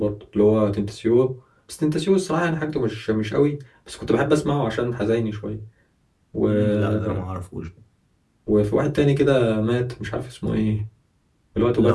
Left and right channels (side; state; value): both; identical; correlation 1.00